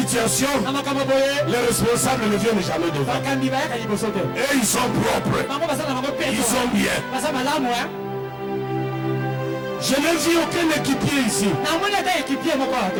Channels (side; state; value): both; identical; correlation 1.00